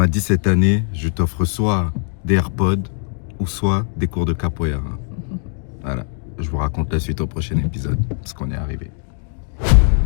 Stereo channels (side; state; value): right; silent; 59 dB below the other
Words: dit, cette année, je t'offre soit des AirPods ou soit des cours de capoeira. Voilà, je vous raconte la suite au prochain épisode, parce qu'on est arrivé.